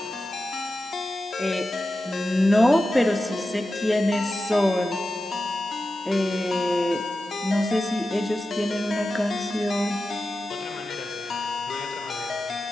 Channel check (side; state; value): both; normal; correlation 0.92